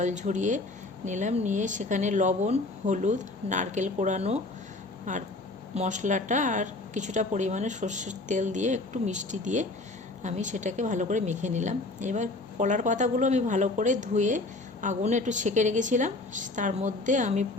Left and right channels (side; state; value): right; quieter; 3.0 dB